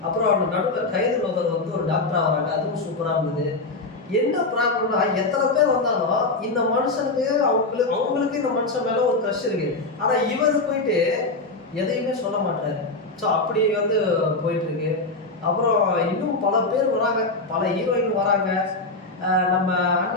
அப்புறம் அவங்க நடுவில் கைது லோகர் வந்து ஒரு டாக்டராக வராங்க, அதுவும் சூப்பராக இருந்தது. என்ன ப்ராப்ளம்னா, எத்தனை பேர் வந்தாலும் இந்த மனுஷனுக்கு அவங்களுக்கு இந்த மனுஷன் மேலே ஒரு க்ரஷ் இருக்கு. ஆனால் இவர் போயிட்டு எதையுமே சொல்ல மாட்டாரு. ஸோ அப்படி வந்து போயிட்டு இருக்கு. அப்புறம் இன்னும் பல பேர் வராங்க, பல ஹீரோயின் வராங்க. நம்ம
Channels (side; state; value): right; quieter; 3.3 dB